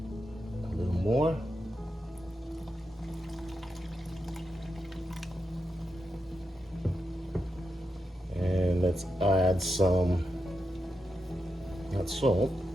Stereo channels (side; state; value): both; normal; correlation 0.87